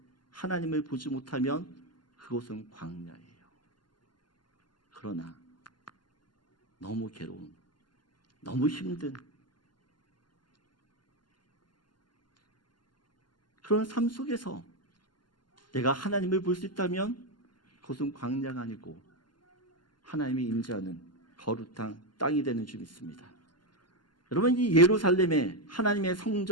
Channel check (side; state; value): right; late; 0.71 ms